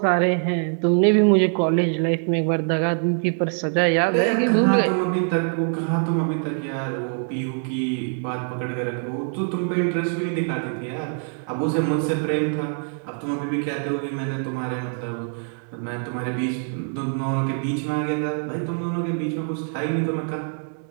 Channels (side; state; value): left; silent; 55 dB below the other